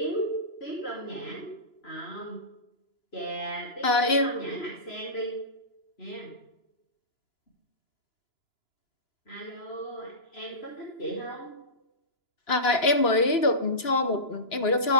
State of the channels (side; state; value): right; late; 2.9 ms